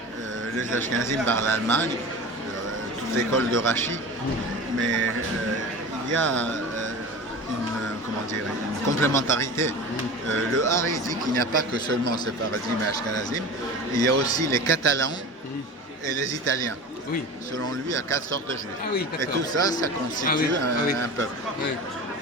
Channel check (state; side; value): normal; both; correlation 0.33